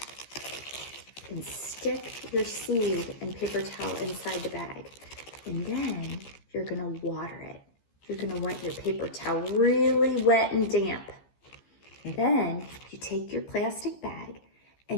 and stick your seed and paper towel inside the bag. And then you're gonna water it. You're gonna want your paper towel really wet and damp. And then you take your plastic bag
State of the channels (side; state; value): right; late; 15 ms